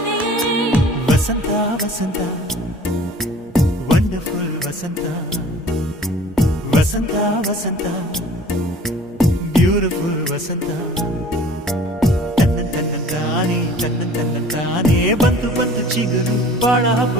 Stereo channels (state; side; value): normal; both; correlation 0.48